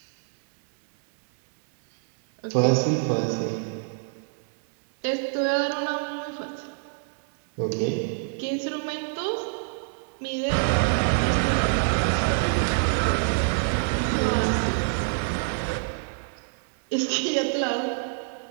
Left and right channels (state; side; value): silent; left; 61 dB below the other